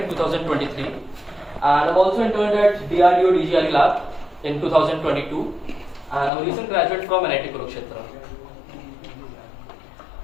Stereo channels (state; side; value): drops out; right; at 6.3 s